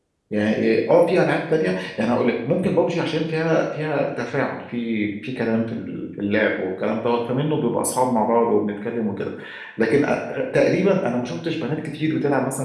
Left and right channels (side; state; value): both; identical; correlation 1.00